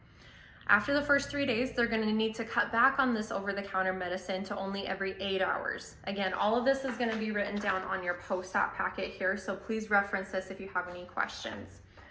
After the first 3 days, they're going to need to cut back on this over-the-counter medicine to only every 8 hours. Again, all of this is going to be written down on your post-op packet here, so please reference this if you have any questions.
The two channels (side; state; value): both; identical; correlation 1.00